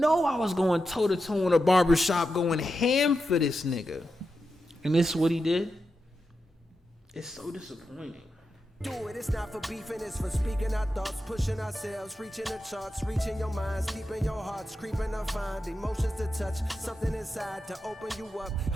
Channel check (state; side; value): normal; both; correlation 0.89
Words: I was going toe to toe in a barbershop, going ham for this nigga, and this is what he did. It's so disappointing. do it. It's not for beefing, it's for speaking our thoughts, pushing ourselves, reaching the charts, reaching your minds, keeping your hearts, creeping to find emotions to touch, something inside to open you up,